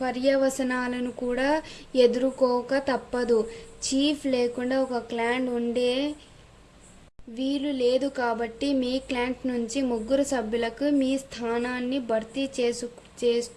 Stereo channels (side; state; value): both; identical; correlation 1.00